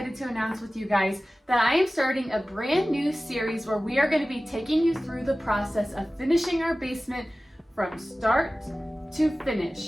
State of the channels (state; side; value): normal; both; correlation 0.97